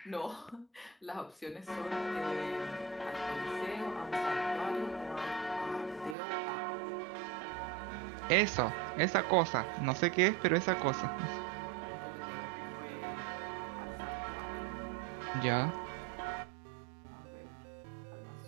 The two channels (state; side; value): drops out; left; at 6.2 s